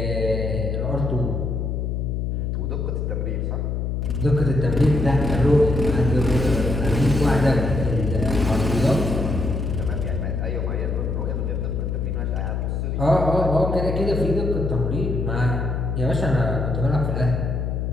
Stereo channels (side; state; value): left; noise; hum, 1 dB below the sound